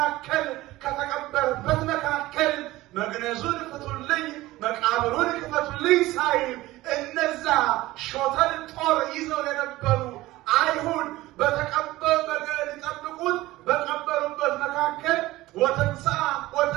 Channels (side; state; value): left; quieter; 17.8 dB